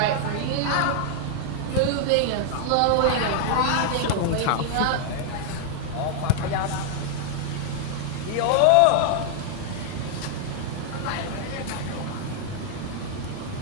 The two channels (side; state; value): both; different; correlation 0.00